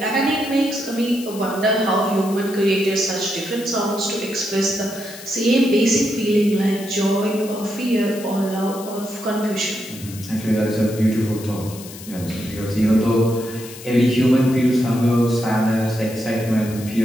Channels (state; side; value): noise; left; hiss, 15 dB below the sound